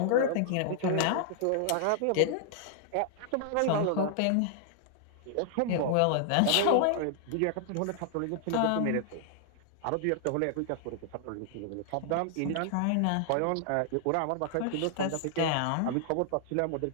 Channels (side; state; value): both; different; correlation 0.00